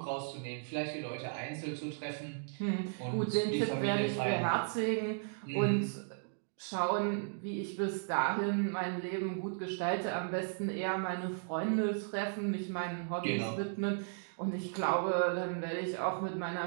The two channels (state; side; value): silent; left; digital silence